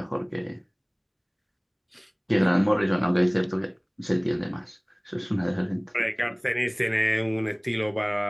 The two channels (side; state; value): both; identical; correlation 1.00